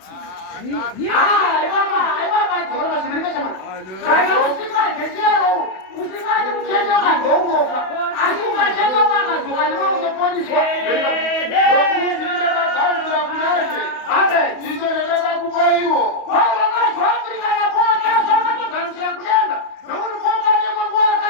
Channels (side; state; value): right; late; 31 ms